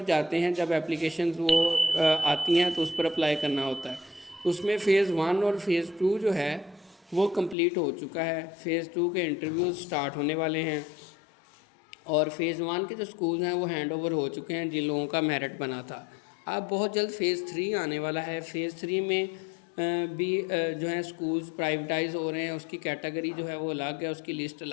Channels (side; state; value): right; drops out; at 7.6 s